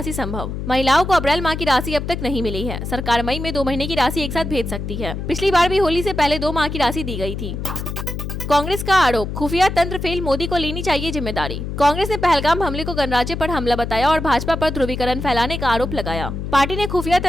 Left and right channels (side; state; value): left; noise; hum, 5 dB below the sound